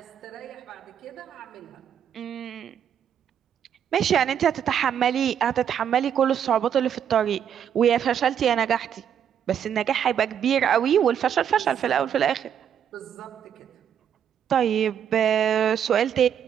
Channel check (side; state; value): left; quieter; 8.8 dB